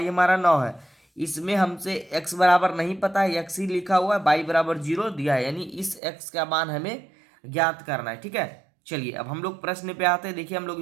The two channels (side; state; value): left; drops out; at 6.0 s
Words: हमारा 9 है। इसमें हमसे x बराबर नहीं पता है, x ही लिखा हुआ है, y बराबर 0 दिया है। यानी इस x का मान हमें ज्ञात करना है। ठीक है, चलिए अब हम लोग प्रश्न पे आते हैं। देखिए हम लोग